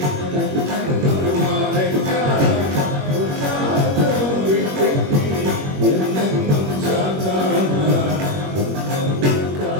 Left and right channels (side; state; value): left; late; 21 ms